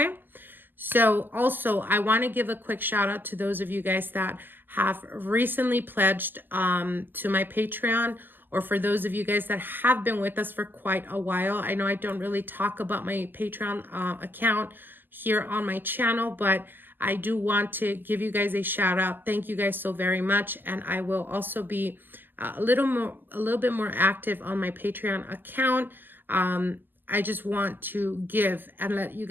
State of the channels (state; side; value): late; left; 0.090 ms